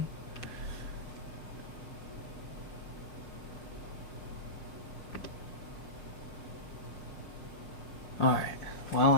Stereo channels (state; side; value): late; right; 6.0 ms